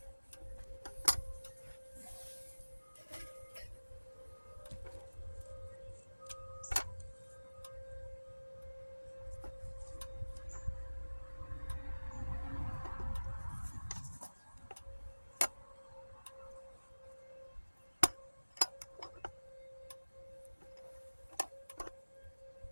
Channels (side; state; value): both; inverted; correlation -1.00